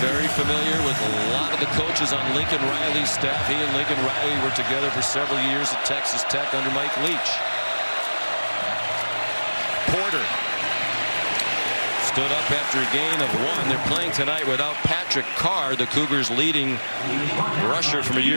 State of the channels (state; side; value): inverted; both; correlation -1.00